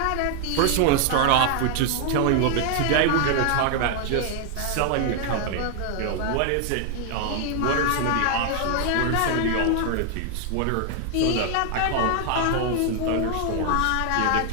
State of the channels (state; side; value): different; both; correlation 0.00